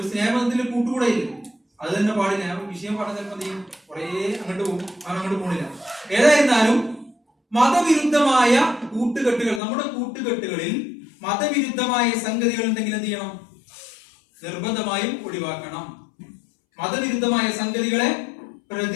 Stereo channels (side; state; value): right; drops out; at 9.6 s